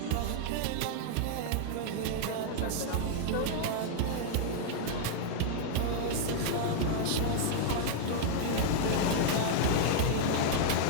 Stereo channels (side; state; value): both; different; correlation -0.01